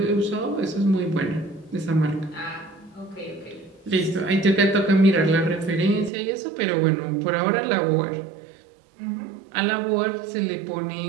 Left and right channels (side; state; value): left; drops out; at 6.1 s